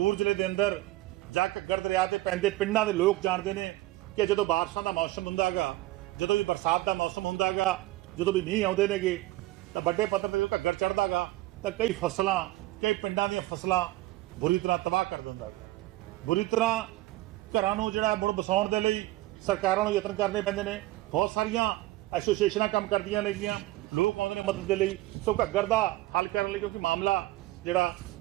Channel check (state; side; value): quieter; left; 17.7 dB